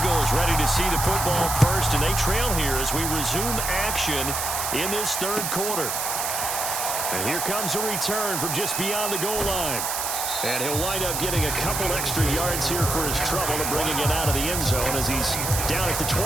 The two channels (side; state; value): right; noise; hiss, 2 dB below the sound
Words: ready to see the football first, and they trail here as we resume action in this third quarter. And here comes a return from just beyond the goal line. And he'll wind up getting a couple extra yards here for his trouble and bringing it out of the end zone as he's down at the